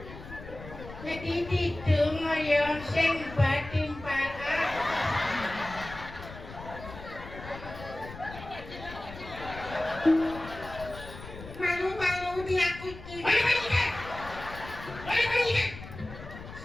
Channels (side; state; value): left; noise; rumble, 13 dB below the sound